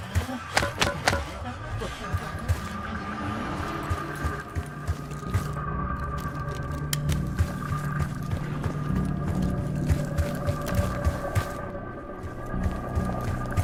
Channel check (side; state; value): both; identical; correlation 1.00